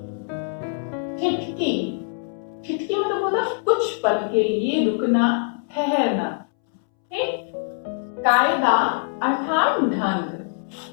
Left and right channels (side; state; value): right; silent; 63 dB below the other